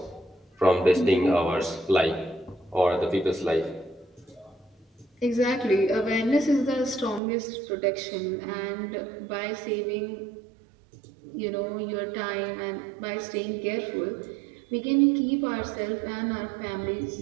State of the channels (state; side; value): drops out; left; at 7.2 s